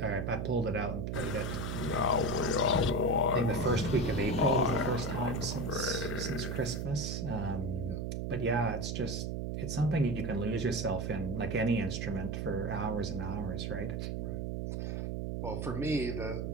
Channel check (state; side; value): noise; right; hum, 2 dB below the sound